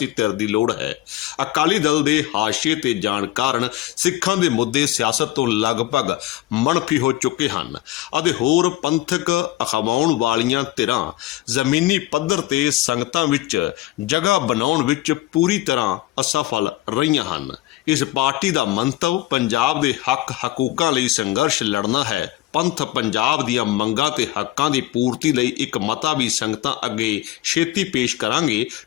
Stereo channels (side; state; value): right; quieter; 15.9 dB